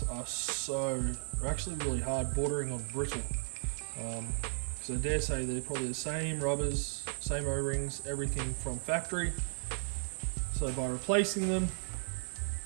are actually really hard, bordering on brittle. So I dare say they're probably the same rubbers, same O-rings, everything from factory. So by replacing them,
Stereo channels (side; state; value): left; silent; digital silence